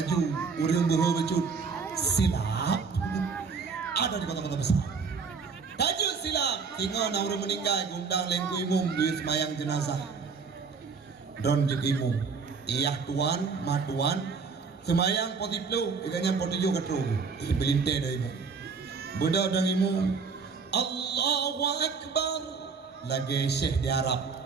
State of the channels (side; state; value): left; quieter; 5.2 dB